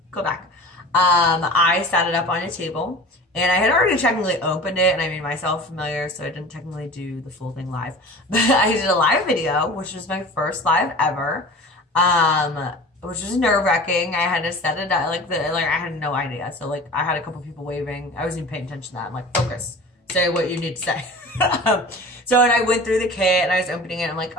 go back. I set it up on a table, and I had already technically opened it and I made myself familiar, so I didn't technically do the full thing live. But I did a live video, which was my first live ever, which was nerve-wracking. I had to set it up, I had no idea. So I had a couple people waving. I wasn't even paying attention to that. I'm like, focus. Say what you need to say. So, and I went through the kit and I was opening it. I'm like,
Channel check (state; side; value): normal; both; correlation 0.39